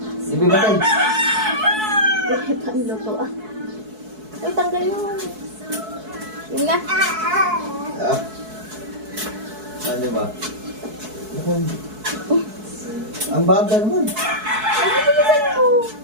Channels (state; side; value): late; left; 4.6 ms